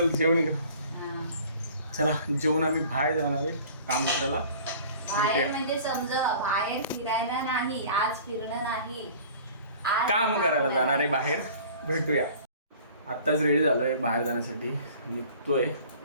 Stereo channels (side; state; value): both; inverted; correlation -0.47